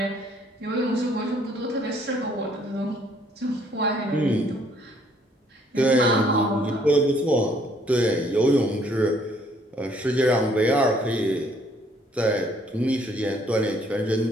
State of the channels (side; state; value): both; normal; correlation 0.64